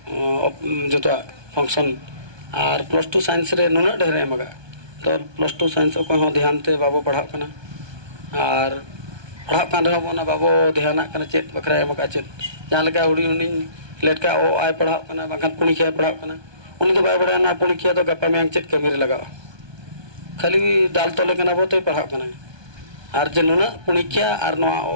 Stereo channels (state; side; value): late; left; 1.2 ms